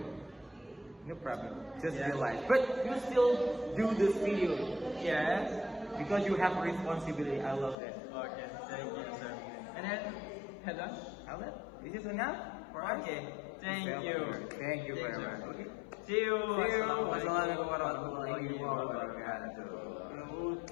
No problem. Just Yeah. realize. But you still do this video Yes. because you have responsibility. I love that. Okay, thank you, sir. And then, hello. Alan, is this enough for us? Okay, thank you. Thank you very sir. much. Okay. See you. See you. Assalamualaikum Wassalamualaikum warahmatullahi warahmatullahi wabarakatuh.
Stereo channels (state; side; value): drops out; right; at 7.8 s